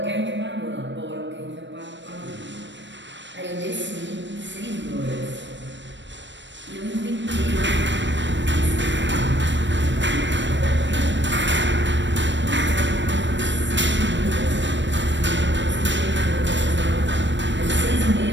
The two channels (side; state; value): left; late; 0.53 ms